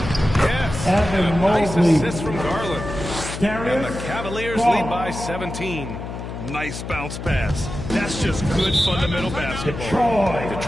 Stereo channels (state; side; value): noise; left; hum, 8 dB below the sound